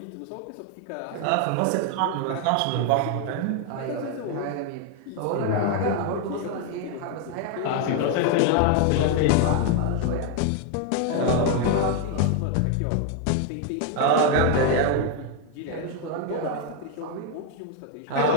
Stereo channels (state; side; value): different; both; correlation 0.01